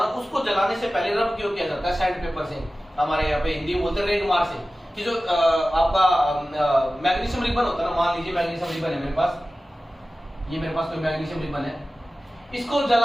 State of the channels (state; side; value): normal; both; correlation 0.96